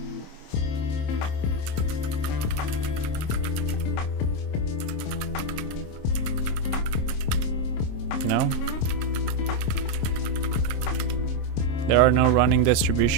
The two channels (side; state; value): right; late; 26 ms